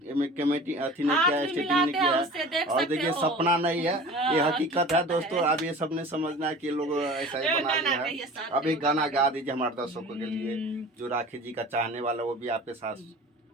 कमेटी अथी नहीं किया है, स्टेटिंग नहीं किया है। और देखिए सपना नहीं है, ये हकीकत है दोस्तों। अब ये सबने समझना है कि लोग ऐसा ही बना लिया है। अब एक गाना गा दीजिए हमारे दर्शकों के लिए, जो राखी जी का चाहने वाला वो भी आपके साथ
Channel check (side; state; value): both; normal; correlation 0.40